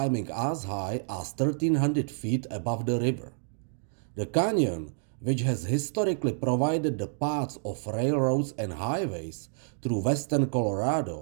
as high as 1,300 feet above the river. The canyon, which has historically provided the paths of railroads and highways through western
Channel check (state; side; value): silent; left; digital silence